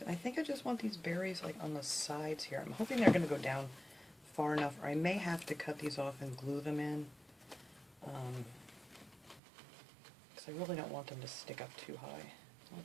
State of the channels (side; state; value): left; drops out; at 9.4 s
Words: I think I just want these berries like on the sides here. I'm hoping they're going to go down far enough, or I may have to cut these off and glue them in. Because I really don't want them to stick up too high.